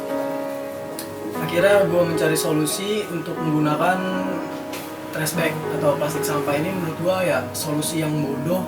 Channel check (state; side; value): identical; both; correlation 1.00